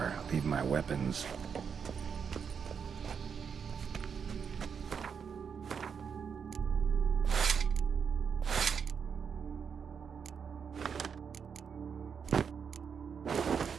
leave my weapons?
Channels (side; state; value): left; quieter; 6.6 dB